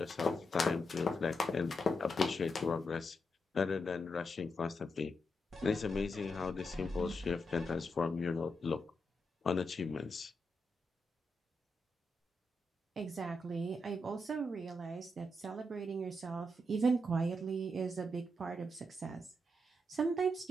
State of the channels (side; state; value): both; normal; correlation 0.84